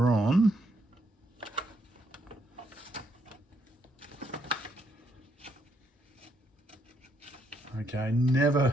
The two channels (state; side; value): normal; both; correlation 0.75